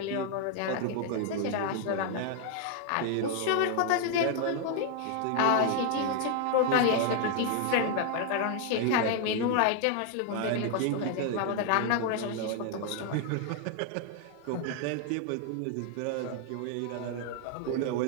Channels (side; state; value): both; different; correlation 0.00